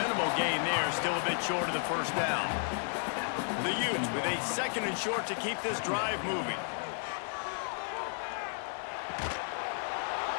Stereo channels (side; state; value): right; silent; 56 dB below the other